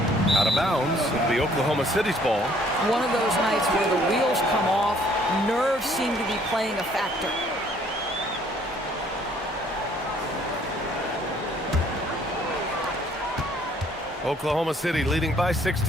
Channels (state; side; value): normal; both; correlation 0.61